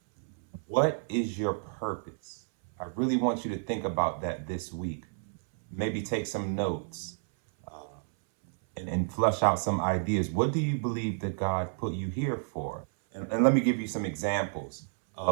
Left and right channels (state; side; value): silent; left; 57 dB below the other